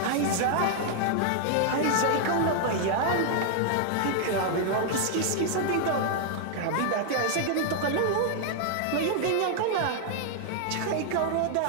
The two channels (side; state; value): both; different; correlation 0.00